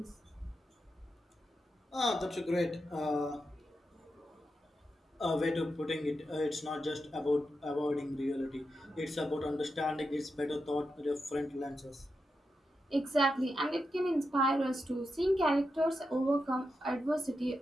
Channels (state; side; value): normal; both; correlation 0.87